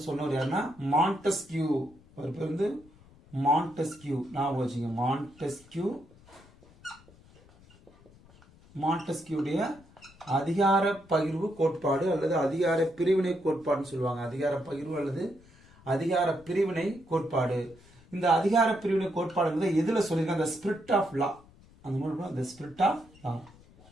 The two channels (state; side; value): noise; left; rumble, 26 dB below the sound